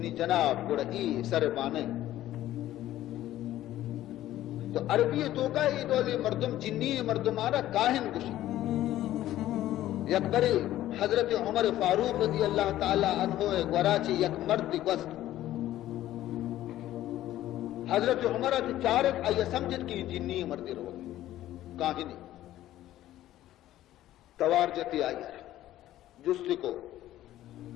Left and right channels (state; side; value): quieter; right; 13.9 dB